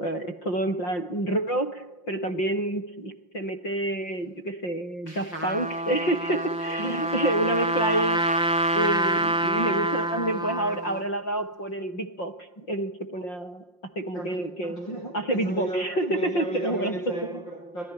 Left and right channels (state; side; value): late; right; 5.7 ms